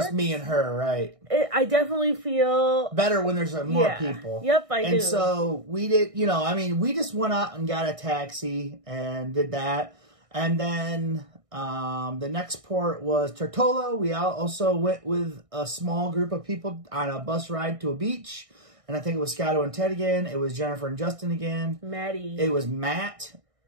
me and her, right? I definitely feel better when there's more people. Yep, I do. And so we did, we just went out and got a taxi and did that. And then the next port was Tortola. We also went with a small group of people on a bus ride to a beach. And I think it was Scotto and Ted again. It was Jennifer and Justin again. Maddie. It was Matt.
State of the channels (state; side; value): late; left; 1.6 ms